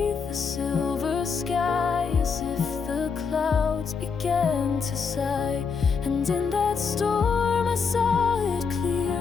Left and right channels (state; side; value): quieter; right; 5.5 dB